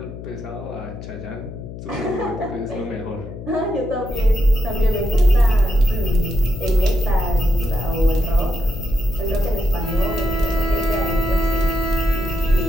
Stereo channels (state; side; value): noise; left; hum, 12 dB below the sound